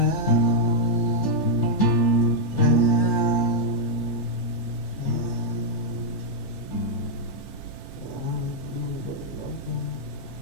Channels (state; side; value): normal; both; correlation -0.04